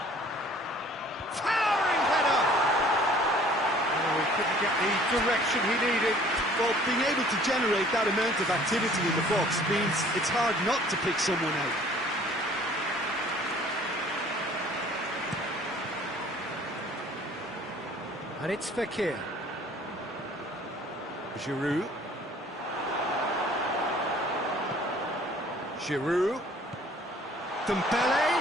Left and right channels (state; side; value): normal; both; correlation 0.53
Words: Towering header! Oh, he couldn't get the direction he needed. Well, being able to generate that amount of activity in the box means it's hard not to pick someone out. And it's Fekir. Giroud. Giroud. Dembele.